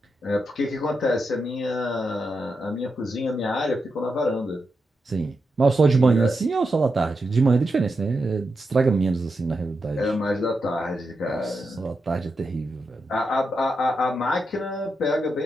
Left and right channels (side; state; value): both; normal; correlation 0.86